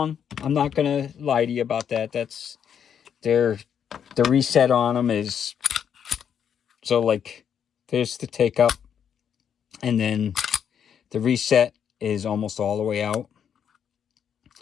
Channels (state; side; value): quieter; right; 8.2 dB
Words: I'm not gonna lie to you about that. That's the reset on them is, so like there's the take up, and then the reset is almost all the way out.